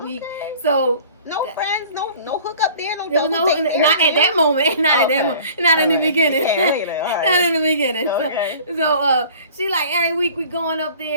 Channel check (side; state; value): both; inverted; correlation -0.47